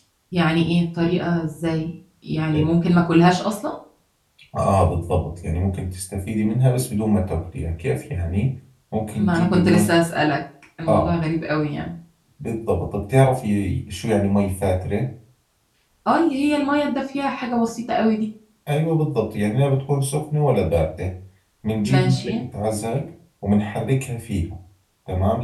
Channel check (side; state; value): both; identical; correlation 1.00